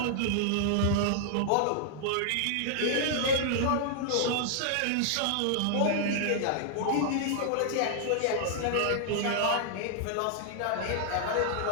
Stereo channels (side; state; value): both; different; correlation -0.01